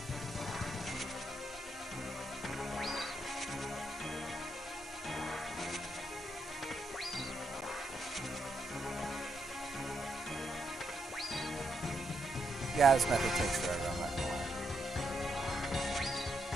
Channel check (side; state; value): both; normal; correlation 0.80